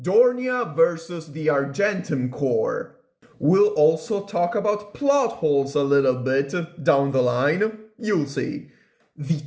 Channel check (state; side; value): identical; both; correlation 1.00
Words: vs. the Argentum Corps. We'll also talk about Plotholes a little bit down the line, you'll see. The